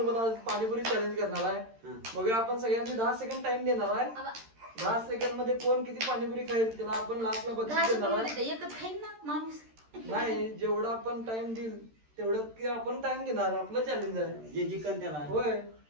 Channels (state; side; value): late; left; 13 ms